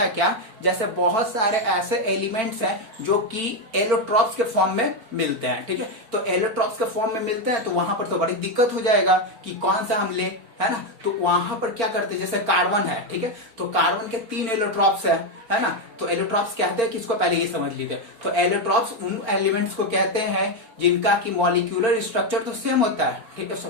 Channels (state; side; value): late; left; 4.4 ms